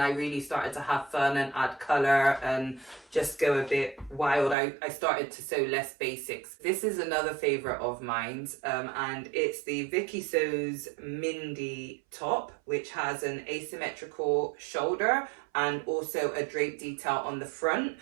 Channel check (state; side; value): drops out; left; at 4.5 s